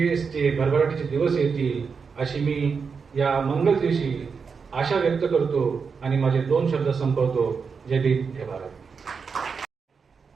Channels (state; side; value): quieter; left; 5.6 dB